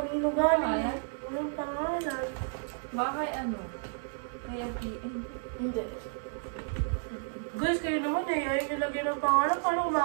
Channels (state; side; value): silent; left; 57 dB below the other